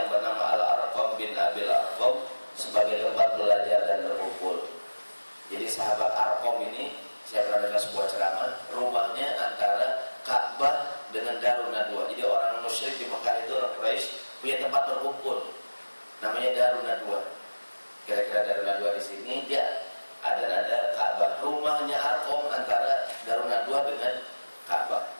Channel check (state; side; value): inverted; both; correlation -1.00